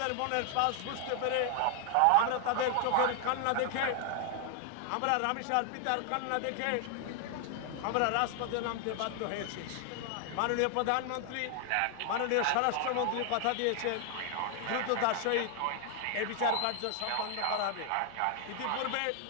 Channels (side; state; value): both; different; correlation 0.00